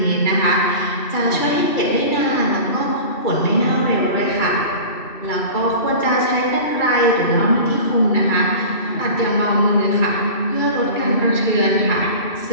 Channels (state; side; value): late; right; 2.6 ms